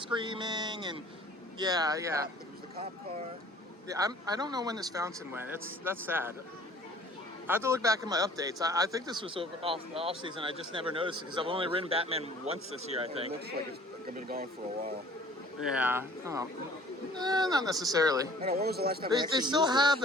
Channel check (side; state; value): both; normal; correlation 0.52